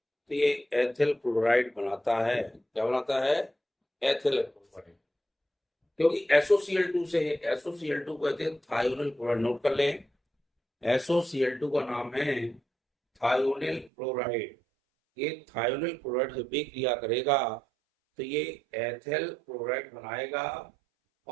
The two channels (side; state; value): left; drops out; at 13.9 s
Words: ये एथिल क्लोराइड बनाता है। क्या बनाता है? Ethyl chloride. क्योंकि SOCl2 से है, SOCl2 कहते हैं थायोनिल क्लोराइड। नोट कर लें, SOCl2 का नाम है थायोनिल क्लोराइड। ये थायोनिल क्लोराइड जब भी क्रिया करेगा तो ये एथिल क्लोराइड बनाएगा